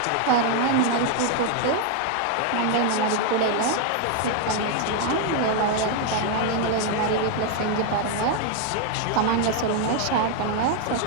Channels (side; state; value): both; different; correlation 0.01